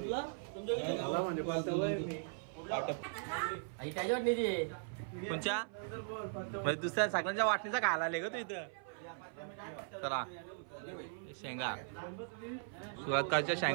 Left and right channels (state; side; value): silent; left; 52 dB below the other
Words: त्याच्या वाटणीची कोणच्या म्हणजे दुसऱ्या सगळ्यांच्या वाटणीचा घाला आले ग तू इथं. चला शेंगा सुरुवातच्या